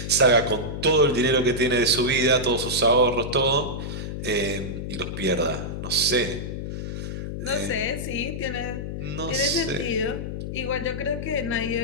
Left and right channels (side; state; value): left; noise; hum, 5 dB below the sound